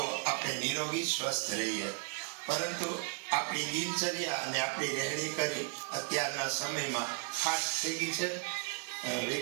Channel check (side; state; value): left; quieter; 38.6 dB